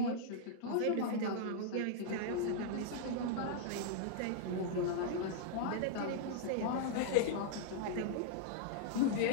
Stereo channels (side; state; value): both; different; correlation -0.01